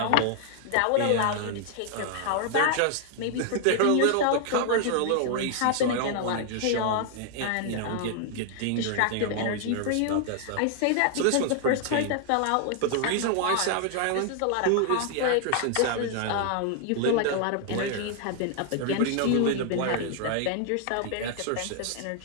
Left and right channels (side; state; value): both; different; correlation 0.00